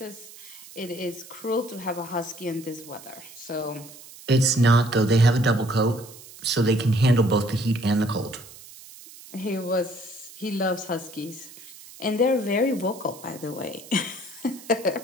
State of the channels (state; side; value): noise; right; hiss, 18 dB below the sound